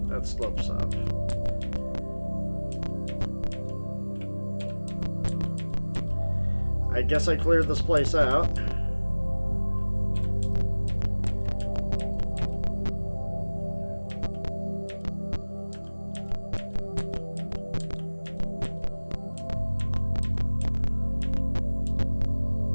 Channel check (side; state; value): both; inverted; correlation -1.00